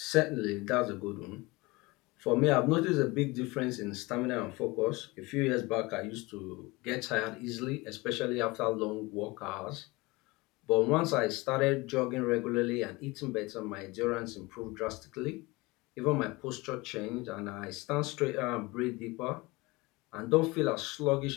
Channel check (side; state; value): right; quieter; 23.2 dB